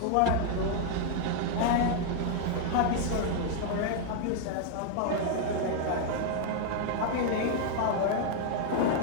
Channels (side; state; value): both; different; correlation 0.00